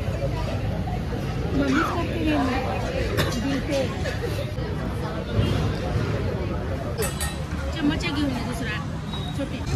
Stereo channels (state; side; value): identical; both; correlation 1.00